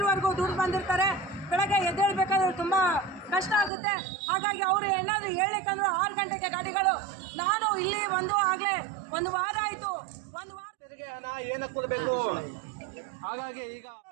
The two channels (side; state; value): left; drops out; at 3.7 s